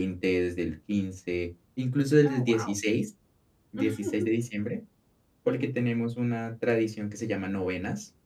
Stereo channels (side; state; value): both; identical; correlation 1.00